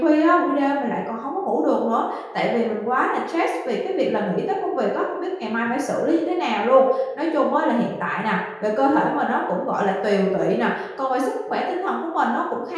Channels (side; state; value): both; identical; correlation 1.00